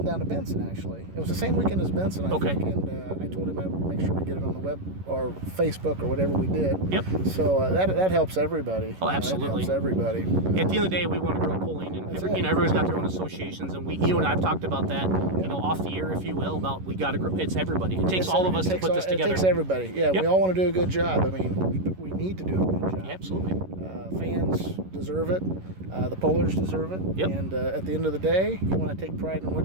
down to Benson, actually. It was the same weekend as Benson, I think. And I told him I'd make sure we get it on the web or Facebook or whatever we did. Yep. So that helps everybody. Oh, absolutely. It helps everybody. At the end of the day, we want to grow polling, and everybody's got their own associations, and and I've talked about that, off the air, if you will, about we got to grow. It's everybody. It takes all of us to put this together. It takes everybody. Yeah, Yep. we all want to do a good job. I mean, we need to do a good job. Absolutely. Fans deserve it. The pollers deserve it. Yep. And at the end of the day, you want to take pride in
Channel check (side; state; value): left; late; 11 ms